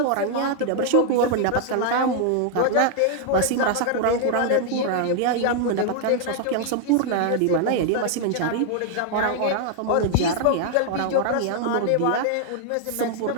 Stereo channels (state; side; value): different; both; correlation 0.00